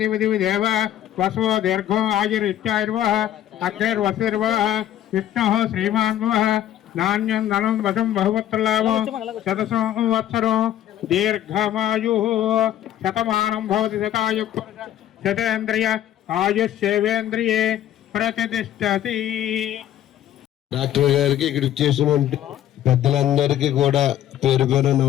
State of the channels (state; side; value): quieter; right; 11.8 dB